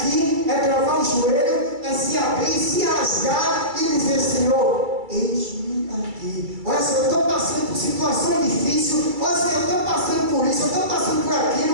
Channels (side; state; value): left; late; 2.3 ms